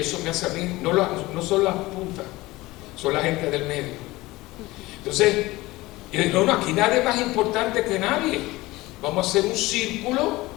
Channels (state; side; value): quieter; right; 19.7 dB